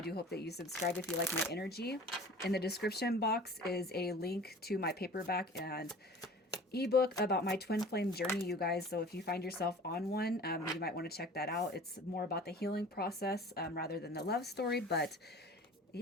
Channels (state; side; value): normal; both; correlation 0.43